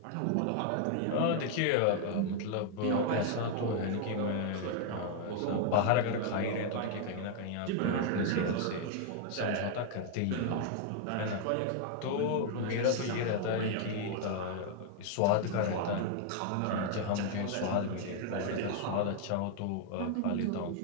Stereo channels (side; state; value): both; different; correlation 0.00